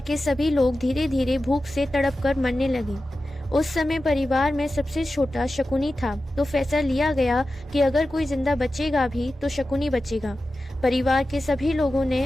के सभी लोग धीरे धीरे भूख से तड़प कर मरने लगे। उस समय परिवार में सबसे छोटा शकुनी था, तो फैसला लिया गया कि अगर कोई जिंदा बचेगा भी तो शकुनी बचेगा। परिवार के सभी लोगों ने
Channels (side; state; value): both; normal; correlation 0.93